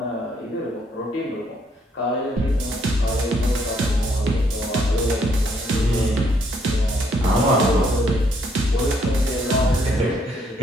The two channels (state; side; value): normal; both; correlation 0.69